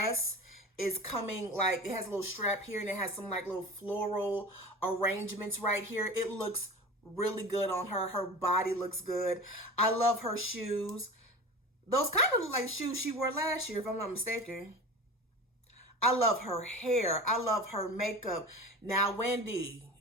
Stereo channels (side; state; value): both; normal; correlation 0.33